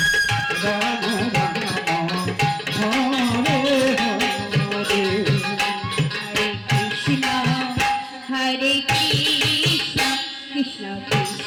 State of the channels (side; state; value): both; identical; correlation 1.00